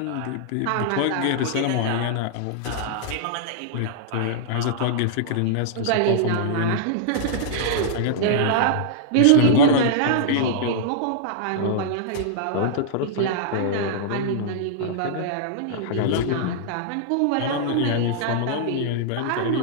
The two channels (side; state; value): both; different; correlation -0.02